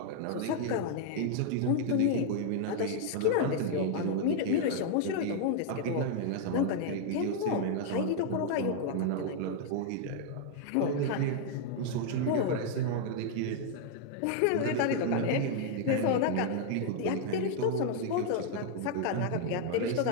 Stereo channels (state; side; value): different; both; correlation 0.00